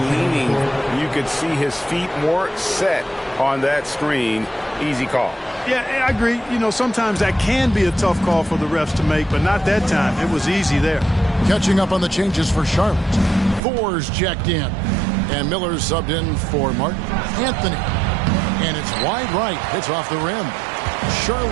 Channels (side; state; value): left; drops out; at 13.6 s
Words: leaning, you could see his feet more set on that screen. Easy call. Yeah, I agree. Sometimes that can be a tough call for the refs to make, but not that time. It was easy there. Catching up on the changes for Charlotte. Thor's checked in. And Miller's subbed in for Martin Anthony. And it's wide right. It's off the rim.